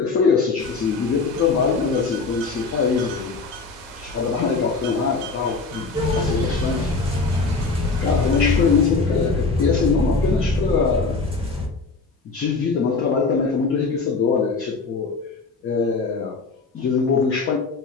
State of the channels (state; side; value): quieter; right; 4.1 dB